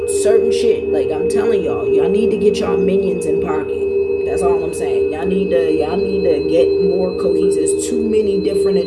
certain shit. Like, I'm telling y'all need to get y'all minions in pocket. That's all I'm saying. Y'all need to get more cohesive. There's too many different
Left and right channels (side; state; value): both; identical; correlation 1.00